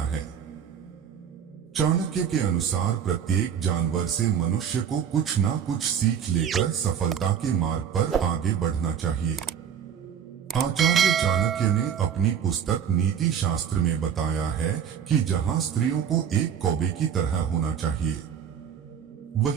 है। चाणक्य के अनुसार प्रत्येक जानवर से मनुष्य को कुछ ना कुछ सीख लेकर सफलता के मार्ग पर आगे बढ़ना चाहिए। आचार्य चाणक्य ने अपनी पुस्तक नीति शास्त्र में बताया है कि जहां स्त्रियों को एक कौवे की तरह होना चाहिए,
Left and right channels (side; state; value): left; quieter; 8.2 dB